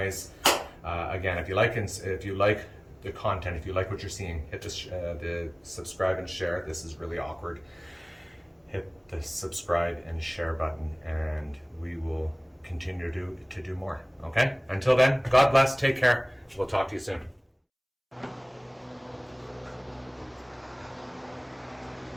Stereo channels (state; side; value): identical; both; correlation 1.00